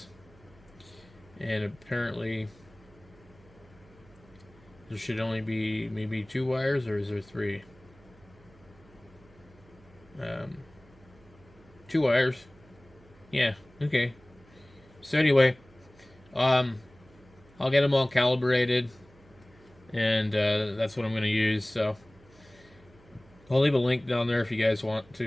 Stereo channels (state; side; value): noise; right; hum, 26 dB below the sound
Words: And apparently there should only be maybe 2 wires, or is there 3? 2 wires. Yeah, okay. So anyway, I'll get them all calibrated, and that's what I'm going to use. So I'll leave a link down there if you guys want